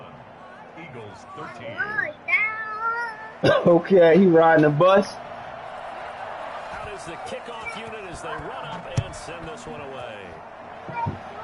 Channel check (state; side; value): identical; both; correlation 1.00